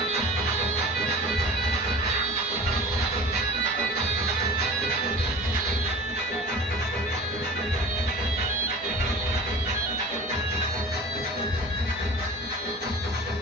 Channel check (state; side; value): normal; both; correlation 0.39